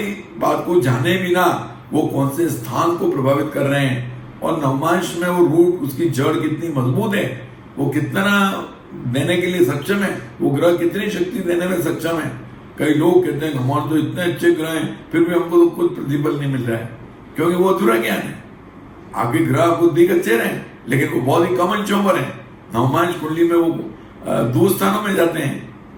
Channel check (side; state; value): both; identical; correlation 1.00